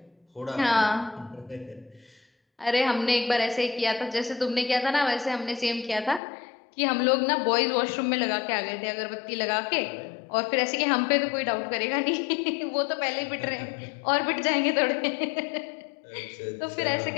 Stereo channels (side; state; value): right; drops out; at 6.2 s